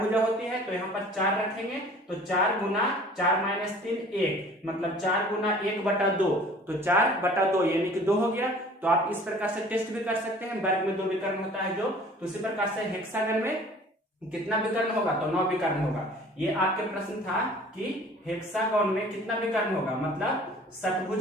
भुजा होती है, तो यहाँ पर 4 रखेंगे। तो 4 गुना 4 माइनस 3 1, मतलब 4 गुना 1/2, तो 4/2 यानी कि 2 हो गया। तो आप इस प्रकार से टेस्ट भी कर सकते हैं, वर्ग में 2 विकर्ण होता है जो, तो इसी प्रकार से हेक्सागन में कितना विकर्ण होगा, तो 9 विकर्ण होगा। ये आपके प्रश्न था कि हेक्सागन में कितना विकर्ण होगा, मतलब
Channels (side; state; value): both; normal; correlation 0.48